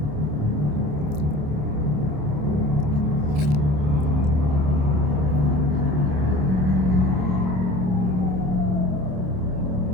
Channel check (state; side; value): late; left; 27 ms